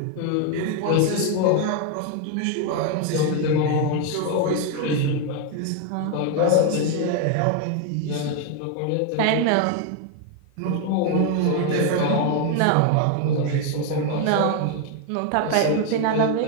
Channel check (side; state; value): both; different; correlation 0.01